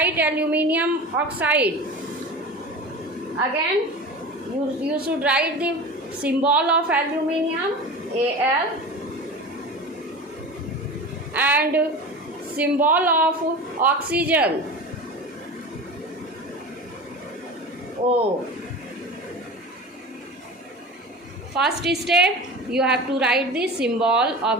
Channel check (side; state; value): both; normal; correlation 0.32